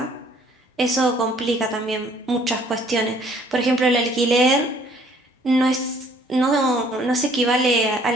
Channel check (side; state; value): both; normal; correlation 0.59